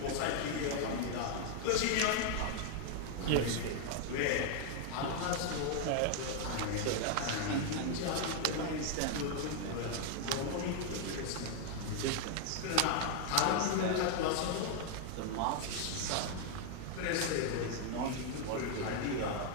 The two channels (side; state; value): both; different; correlation 0.00